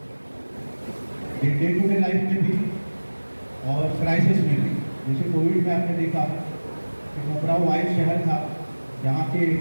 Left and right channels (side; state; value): both; inverted; correlation -1.00